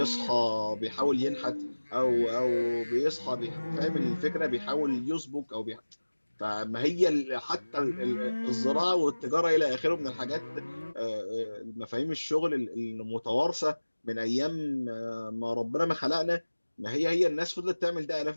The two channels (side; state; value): both; inverted; correlation -1.00